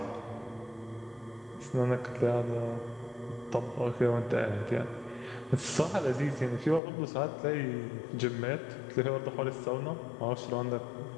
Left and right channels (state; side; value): drops out; right; at 6.8 s